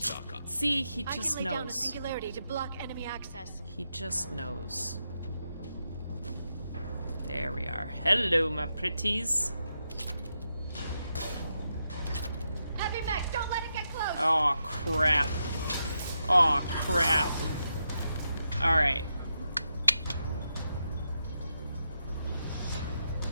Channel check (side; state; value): both; inverted; correlation -0.85